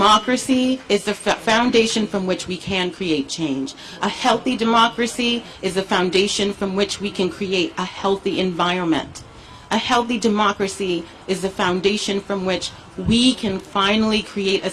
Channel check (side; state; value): both; identical; correlation 1.00